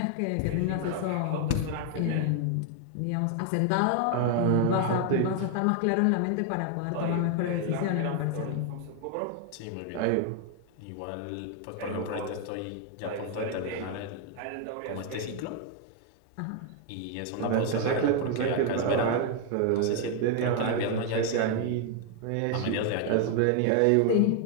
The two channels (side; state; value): both; different; correlation 0.00